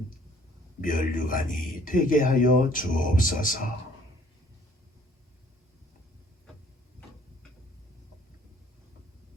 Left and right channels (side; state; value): both; normal; correlation 0.58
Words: 면류관이 되게 하여 주옵소서.